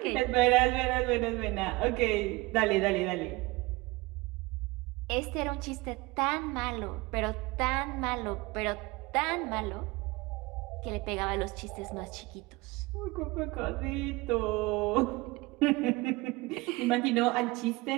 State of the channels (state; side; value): quieter; left; 22.8 dB